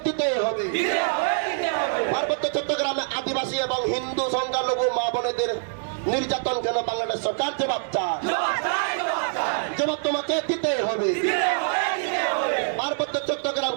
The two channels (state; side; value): silent; left; 59 dB below the other